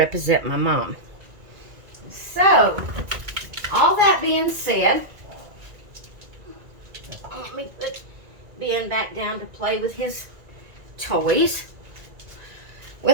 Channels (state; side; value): late; left; 1.9 ms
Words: my mom. So, all that being said, let me put Ben back down to play with his toys.